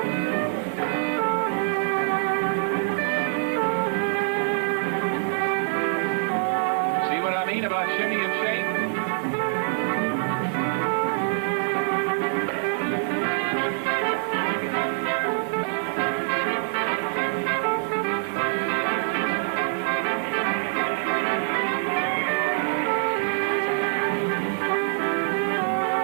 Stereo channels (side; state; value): left; silent; digital silence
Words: About shimmy and shake.